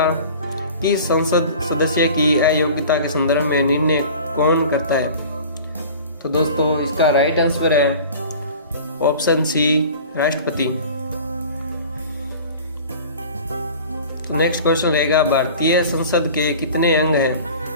किस संसद सदस्य की अयोग्यता के संदर्भ में निर्णय कौन करता है? तो दोस्तों इसका राइट आंसर है ऑप्शन सी, राष्ट्रपति। तो नेक्स्ट क्वेश्चन रहेगा, भारतीय संसद के कितने अंग हैं?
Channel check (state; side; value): inverted; both; correlation -0.42